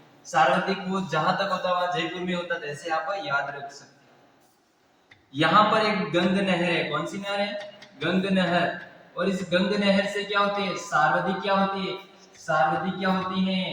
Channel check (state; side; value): identical; both; correlation 1.00